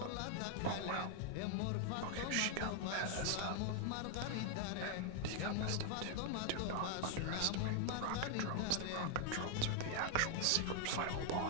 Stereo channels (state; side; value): different; both; correlation 0.00